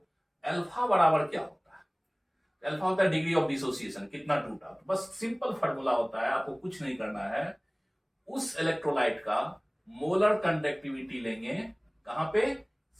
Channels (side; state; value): both; identical; correlation 1.00